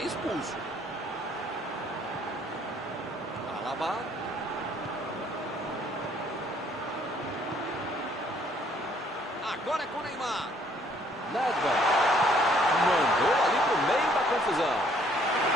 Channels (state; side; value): normal; both; correlation 0.63